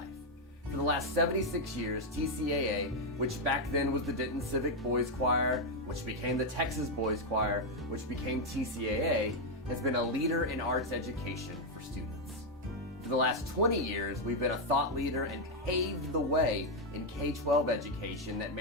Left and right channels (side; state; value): both; normal; correlation 0.01